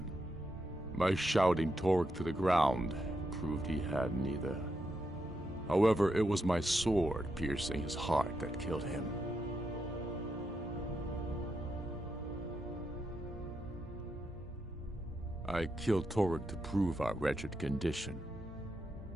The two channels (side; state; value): both; normal; correlation 0.84